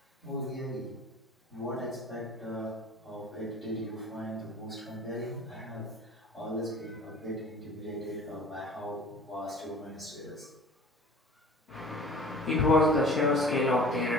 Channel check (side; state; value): both; normal; correlation 0.44